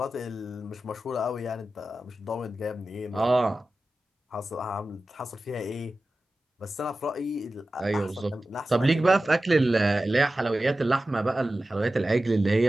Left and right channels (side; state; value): both; normal; correlation 0.94